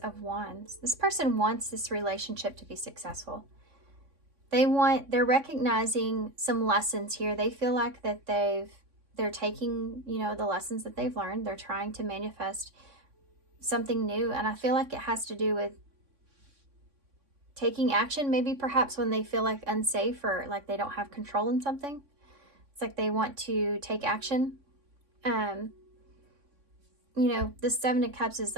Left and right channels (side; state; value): left; late; 3.6 ms